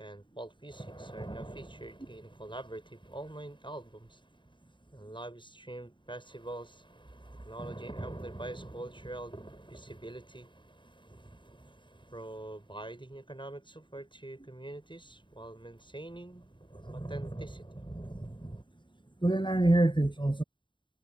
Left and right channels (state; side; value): late; right; 0.23 ms